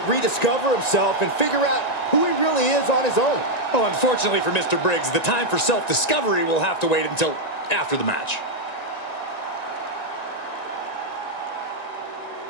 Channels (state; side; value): late; right; 1.9 ms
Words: rediscover himself and figure out who he really is on his own. Well, unfortunately for Mr. Briggs, the time for self-discovery will have to wait until after the match.